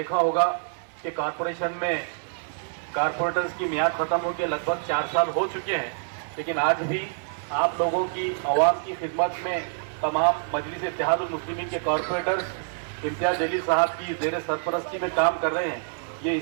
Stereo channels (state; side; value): silent; left; 61 dB below the other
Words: होगा कि कॉरपोरेशन में कारपोरेटर्स की मियाद ख़त्म होकर लगभग 4 साल हो चुके हैं, लेकिन आज भी आप लोगों की आवाम की खिदमत में तमाम मजलिस इत्तेहादुल मुस्लिमीन के कॉरपोरेटर्स इम्तियाज जलील साहब की ज़ेर सरपरस्ती में काम कर रहे हैं। ये